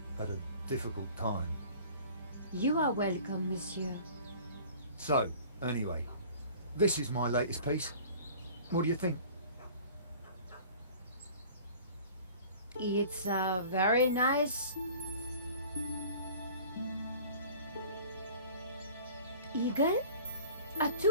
At a difficult time. You are welcome, monsieur. So, anyway, this is my latest piece. What do you think? It's very nice. Eagle? A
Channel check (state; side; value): inverted; both; correlation -0.46